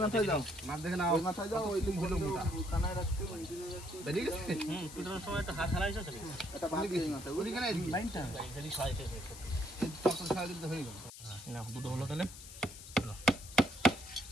মাথায় যাও, মার দেখে না ওই মাথায় যাও, ওই দিক হলো মোটা কানায় রাখতে বেরিয়ে গেছে। পিটানোর সময় একটা হাত হারাইছো তো এটা বাদ দিয়ে মাথায় ওই দিকে লাইনটা যদি ছয় থেকে তখন সারা দিতে হয়ে গেল না দুটো হলো তাহলে।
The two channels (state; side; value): noise; left; hiss, 14 dB below the sound